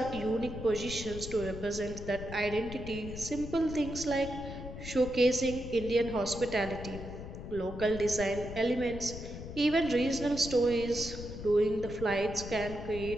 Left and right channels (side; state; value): left; noise; rumble, 10 dB below the sound